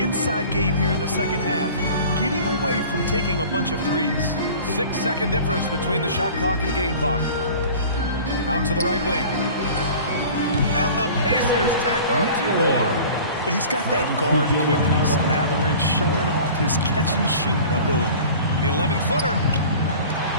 game here in the second half, getting away from taking a bunch of threes. 6-second difference between the shot clock and game clock. Out to the right wing. And the Pacers tack on 2 more. He's got that guard quickness. Mathurin showing off his catch-and-shoot ability. The 11-footer.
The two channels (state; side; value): inverted; both; correlation -0.42